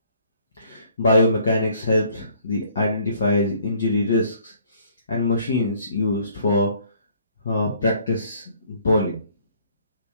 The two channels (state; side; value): inverted; both; correlation -0.61